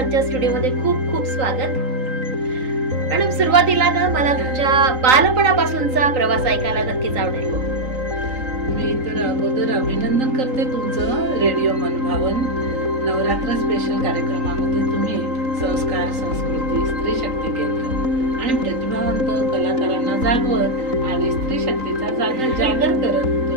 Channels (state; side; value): late; left; 3.9 ms